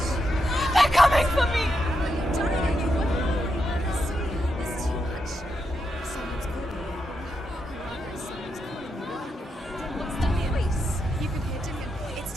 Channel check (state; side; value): normal; both; correlation 0.84